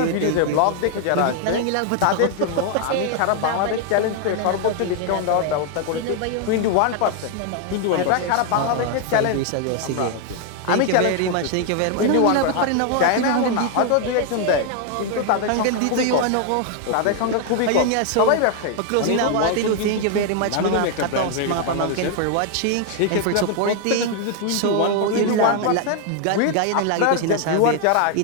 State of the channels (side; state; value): both; different; correlation 0.00